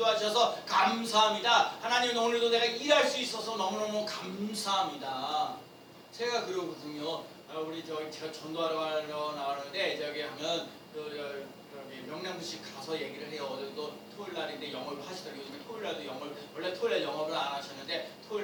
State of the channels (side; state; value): both; identical; correlation 1.00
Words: 감사합니다. 하나님 오늘도 내가 일할 수 있어서 너무너무 감사합니다. 제가 그러거든요. 제가 전도하러 나가는데 저기 하면 명랑부시 가서 얘기를 해요. 오늘도 토요일 날인데 영업을 하시더라고요. 요즘에 토요일 날도 원래 토요일 날 영업을 안 하셨는데 토요일